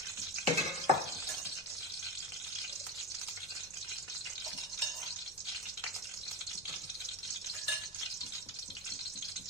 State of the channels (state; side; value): normal; both; correlation 0.20